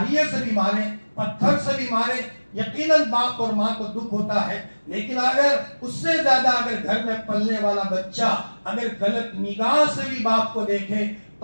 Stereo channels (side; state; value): both; inverted; correlation -1.00